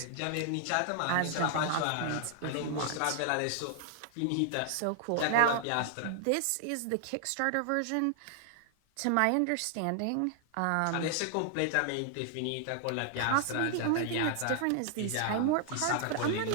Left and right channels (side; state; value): both; different; correlation 0.00